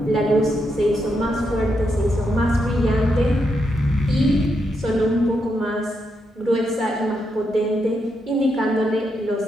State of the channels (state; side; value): normal; both; correlation 0.82